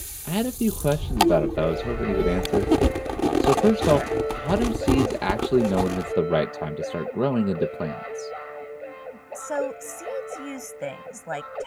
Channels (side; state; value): both; identical; correlation 1.00